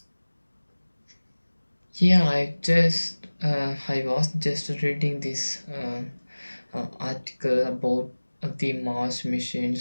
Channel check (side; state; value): both; inverted; correlation -1.00